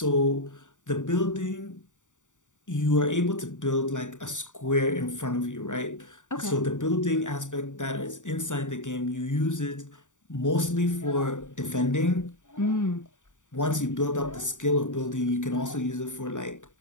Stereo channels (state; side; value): late; right; 0.86 ms